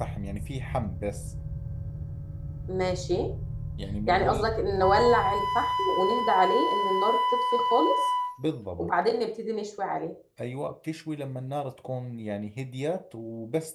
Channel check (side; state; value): both; identical; correlation 1.00